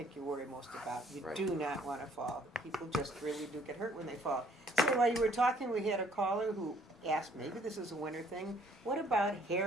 you worry most about. You Right. do not want to fall. People just really do get hurt when they fall. So while you were talking, we had a caller who asked, maybe this is a winter thing, what about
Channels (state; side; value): normal; both; correlation 0.61